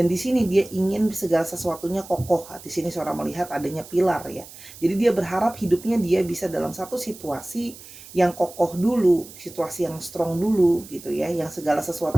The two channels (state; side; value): noise; right; hiss, 17 dB below the sound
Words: di sini dia ingin segala sesuatunya kokoh. Di sini Sora melihat adanya pilar ya. Jadi dia berharap hidupnya dia bisa dalam satu situasi yang kokoh dulu, situasi yang strong dulu gitu ya, yang segala